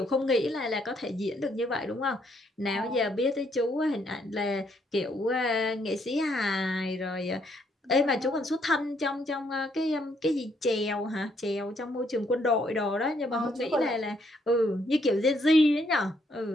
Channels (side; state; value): both; normal; correlation 0.71